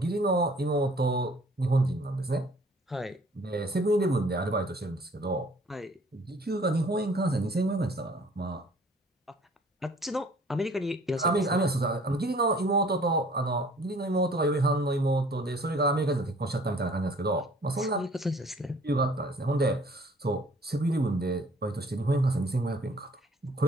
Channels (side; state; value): both; normal; correlation 0.54